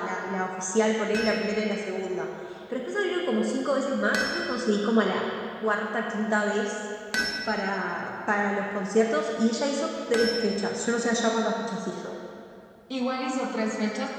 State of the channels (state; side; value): identical; both; correlation 1.00